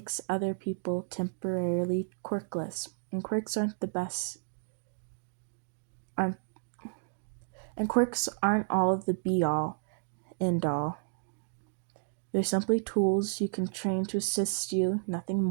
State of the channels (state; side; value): silent; left; digital silence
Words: other people temporarily quirkless, and quirks aren't the best. And quirks aren't all of the be-all, end-all. They're simply tools you can train to assist you, nothing